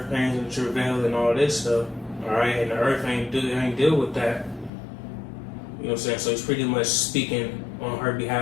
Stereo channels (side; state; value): right; drops out; at 4.7 s